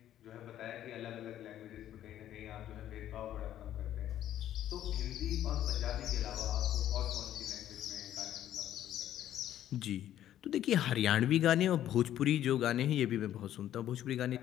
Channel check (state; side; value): quieter; right; 11.8 dB